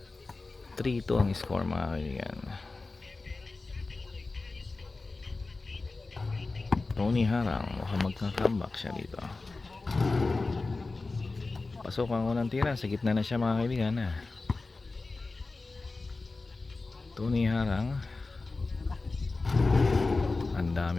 3-2 ang score, mga kaibigan. TonyHarang, mukhang magka-comeback siya dito. Pasok ang unang tira. Sa gitna na siya, mga kaibigan. TonyHarang. Ang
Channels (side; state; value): right; quieter; 3.6 dB